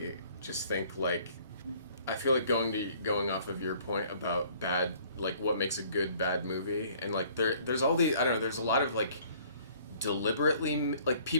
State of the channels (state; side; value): inverted; both; correlation -0.56